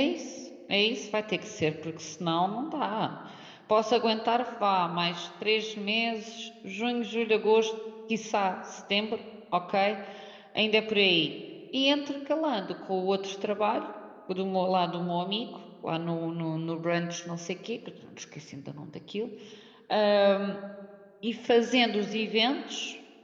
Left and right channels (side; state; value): both; identical; correlation 1.00